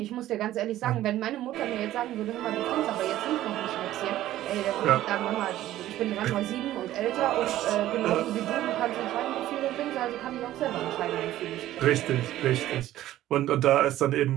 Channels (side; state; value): left; quieter; 14.0 dB